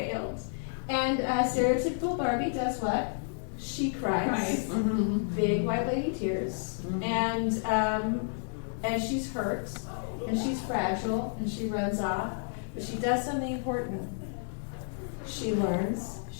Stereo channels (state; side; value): silent; right; digital silence